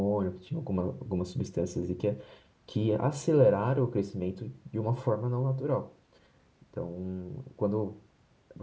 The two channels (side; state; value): both; identical; correlation 1.00